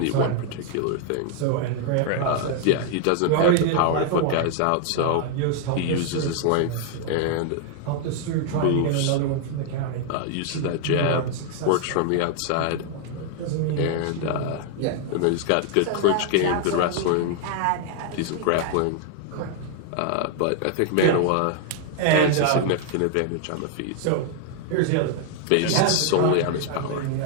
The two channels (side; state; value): both; different; correlation 0.00